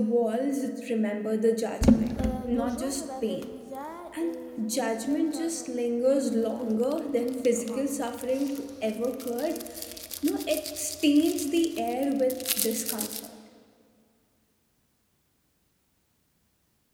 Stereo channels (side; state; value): both; identical; correlation 1.00